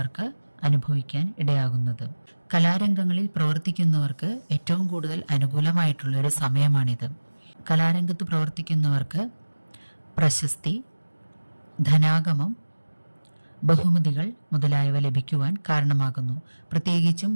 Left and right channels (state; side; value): inverted; both; correlation -1.00